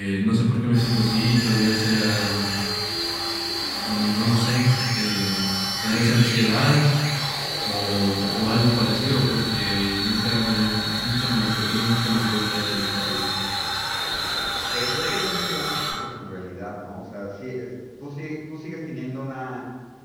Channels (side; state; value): both; identical; correlation 1.00